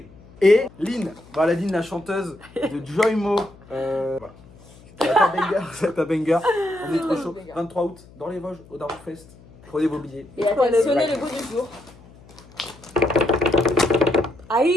Et Lynn, voilà Lynn, la chanteuse de Joymo. Voilà. C'est un banger. On est trop chaud. 23 août, dans les Vosges, au Darkfest. Prenez vos billets. Et attentionner le goût du jour.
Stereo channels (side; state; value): left; noise; hum, 23 dB below the sound